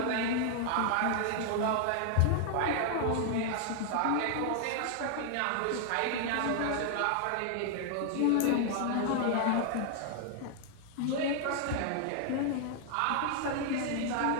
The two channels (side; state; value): both; different; correlation 0.00